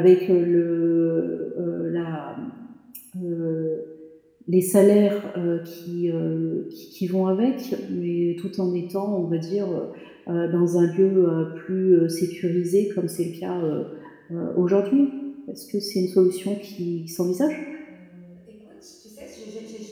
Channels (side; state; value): both; identical; correlation 1.00